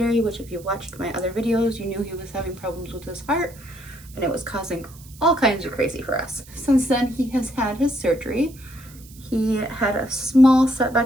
which if you watched my other videos, you knew he was having problems with his heart, and it was causing all kinds of crazy for us. Since then, he has had his surgery. He had a small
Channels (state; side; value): noise; right; hiss, 22 dB below the sound